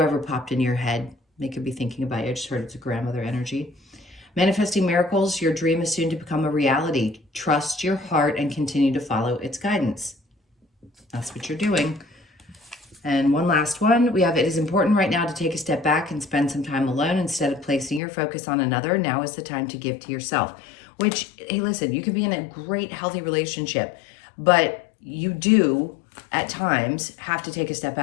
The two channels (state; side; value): drops out; right; at 18.0 s